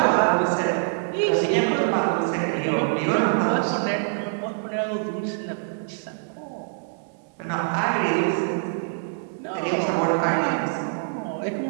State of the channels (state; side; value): silent; left; digital silence